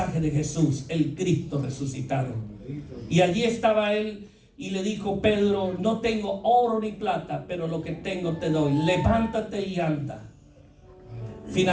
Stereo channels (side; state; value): both; identical; correlation 1.00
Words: de Jesús, el Cristo resucitado. Y allí estaba él y le dijo: Pedro, no tengo oro ni plata, pero lo que tengo te doy. Levántate y anda.